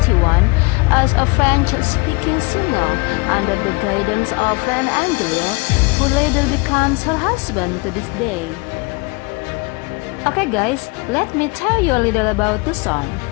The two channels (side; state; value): right; quieter; 27.9 dB